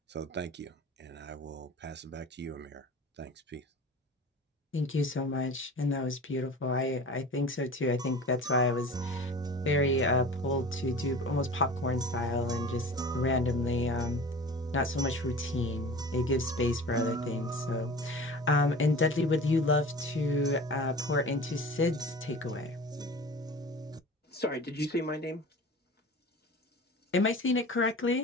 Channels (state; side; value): normal; both; correlation 0.38